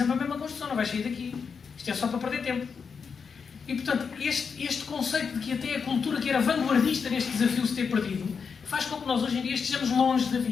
a mesma construção, não vais sair daqui. Isto é só para perder tempo. E portanto, este conceito de que até a cultura que era vanguardista neste desafio se ter perdido, faz com que nós hoje em dia estejamos longe da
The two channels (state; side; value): quieter; right; 5.9 dB